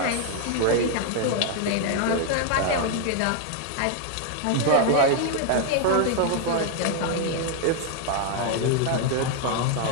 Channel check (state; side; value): different; both; correlation 0.00